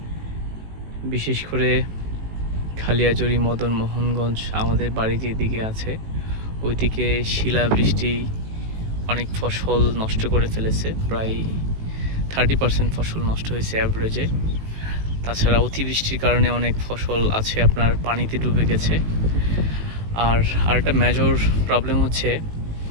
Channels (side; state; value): left; late; 18 ms